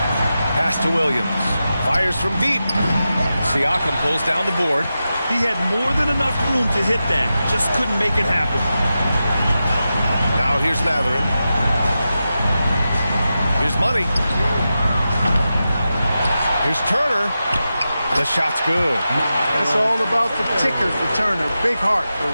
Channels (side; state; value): both; inverted; correlation -0.91